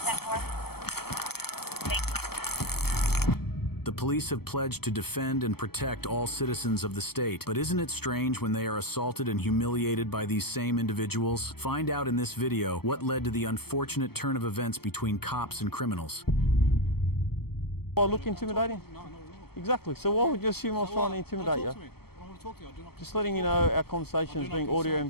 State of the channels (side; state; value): right; late; 0.96 ms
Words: 4. The police have pledged to defend and protect all citizens of the state. But isn't it strange when they are assaulted and humiliated by these same individuals? Find out in this video what led to the unfortunate turn of events between cops and criminals. I look intimidating? No. Exactly. So why would you assume I was trying to intimidate you? I don't want to talk to you. I do not. Just letting you know our conversation is being audio and